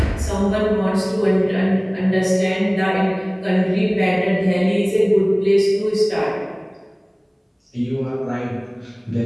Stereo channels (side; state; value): both; identical; correlation 1.00